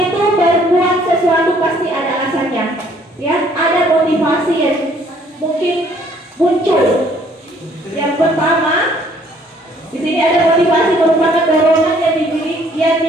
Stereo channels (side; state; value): both; normal; correlation 0.61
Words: itu berbuat sesuatu pasti ada alasannya. Ya, ada motivasi yang mungkin muncul. Yang pertama, di sini ada motivasi merupakan dorongan yang